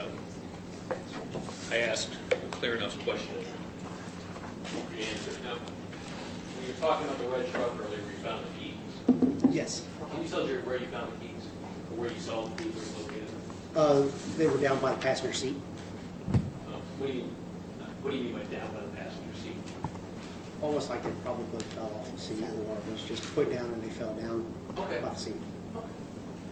I asked clear enough question. The answer. Now, when you were talking about the red truck earlier, where you found the keys, Yes. can you tell us where you found the keys? Or where you saw the keys, where you located them? They were down by the passenger seat. What do you mean by down by the passenger seat? Almost like they probably fell off the seat or was just put down and they fell down Okay. by the seat.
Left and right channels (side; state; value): both; identical; correlation 1.00